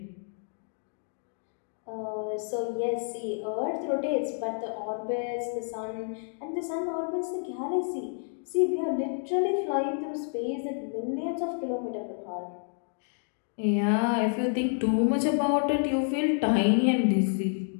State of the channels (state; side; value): silent; right; 58 dB below the other